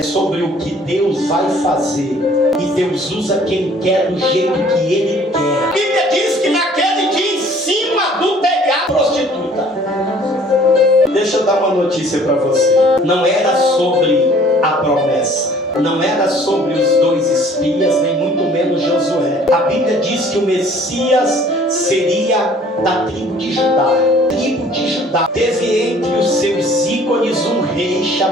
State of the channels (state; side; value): normal; both; correlation 0.54